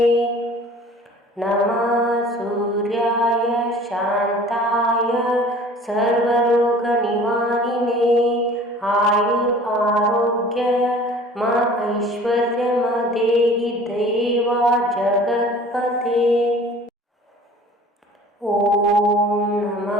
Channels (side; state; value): both; normal; correlation 0.46